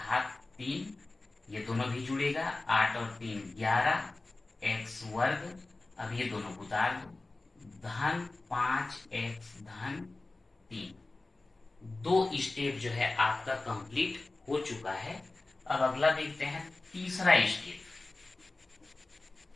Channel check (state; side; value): quieter; right; 3.2 dB